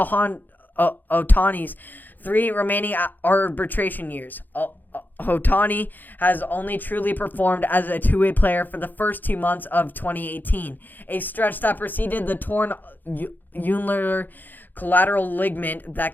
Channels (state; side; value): late; right; 0.087 ms